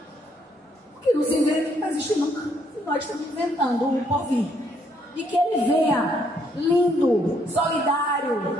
O que não se inventa não vai existir nunca. E nós estamos inventando o porvir. E que ele venha lindo,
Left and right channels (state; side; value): normal; both; correlation 0.70